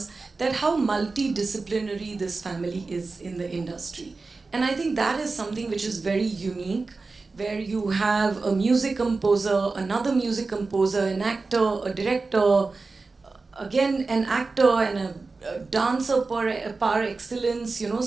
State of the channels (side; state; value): left; quieter; 3.9 dB